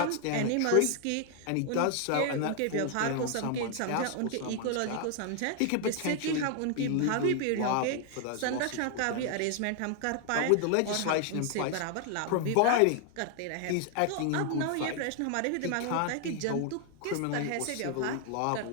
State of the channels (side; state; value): both; different; correlation 0.00